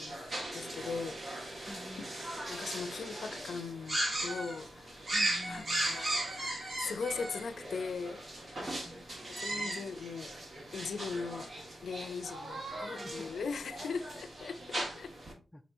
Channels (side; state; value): both; normal; correlation 0.86